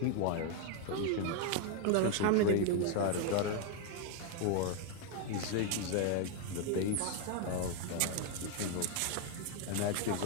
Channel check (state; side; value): different; both; correlation 0.00